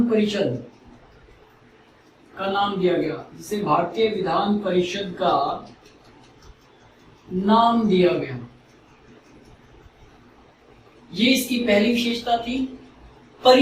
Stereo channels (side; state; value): both; identical; correlation 1.00